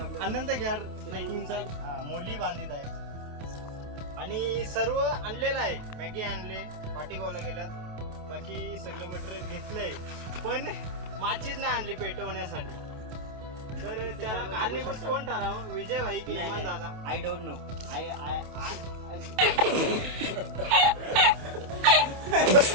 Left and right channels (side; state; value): left; late; 28 ms